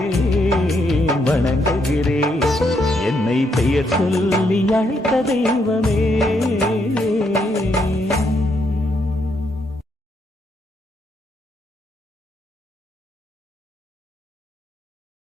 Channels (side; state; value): both; normal; correlation 0.76